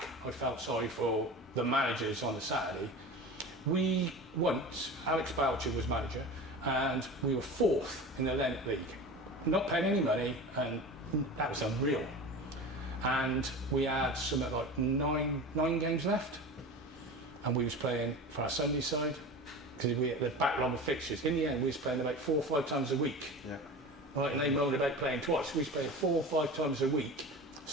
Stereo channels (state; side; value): normal; both; correlation 0.32